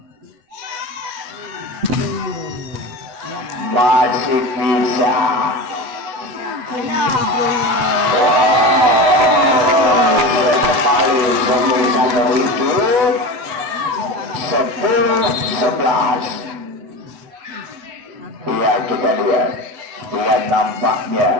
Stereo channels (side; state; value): left; late; 7.9 ms